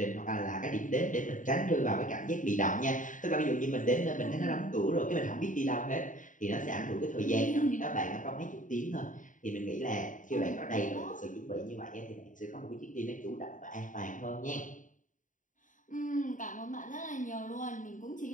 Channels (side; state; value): right; late; 0.38 ms